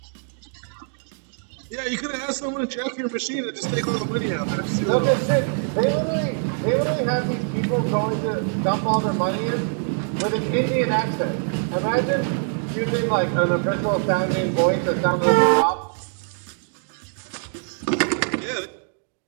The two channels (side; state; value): left; silent; digital silence